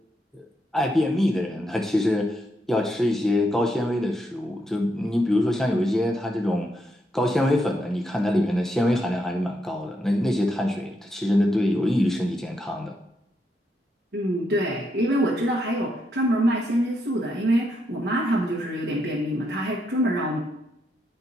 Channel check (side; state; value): both; normal; correlation 0.80